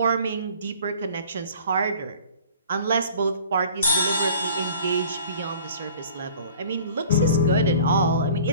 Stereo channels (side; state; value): both; inverted; correlation -0.47